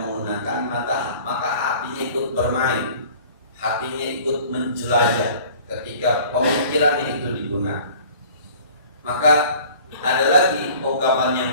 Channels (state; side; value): inverted; both; correlation -0.48